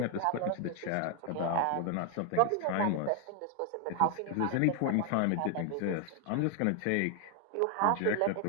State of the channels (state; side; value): different; both; correlation 0.00